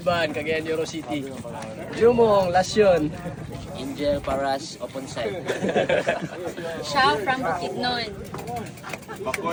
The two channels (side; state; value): both; identical; correlation 1.00